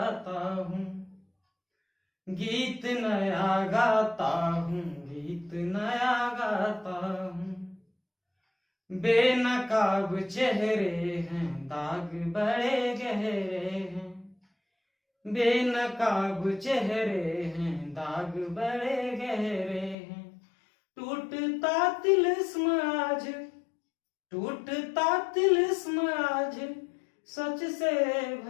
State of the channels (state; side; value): drops out; right; at 20.0 s